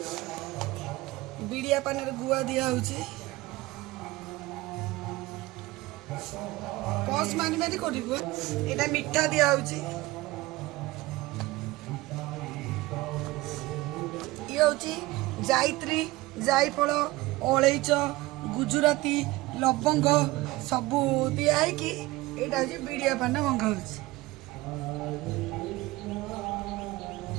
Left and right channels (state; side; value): quieter; left; 19.7 dB